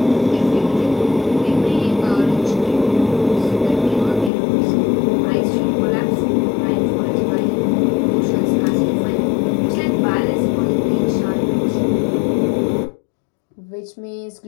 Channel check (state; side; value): drops out; right; at 4.3 s